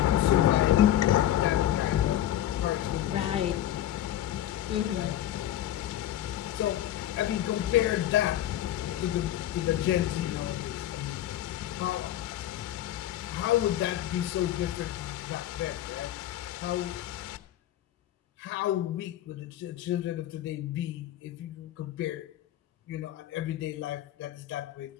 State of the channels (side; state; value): right; quieter; 12.6 dB